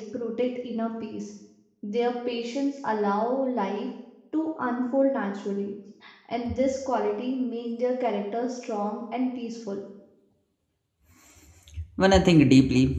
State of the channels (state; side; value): identical; both; correlation 1.00